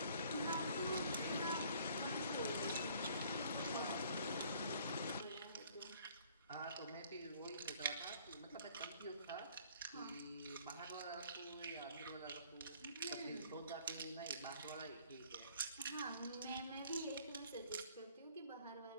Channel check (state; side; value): inverted; both; correlation -0.58